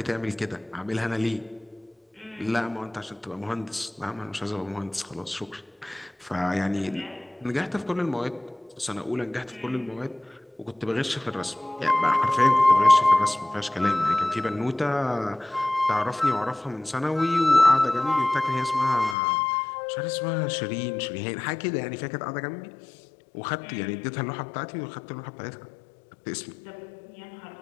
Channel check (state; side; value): drops out; right; at 19.2 s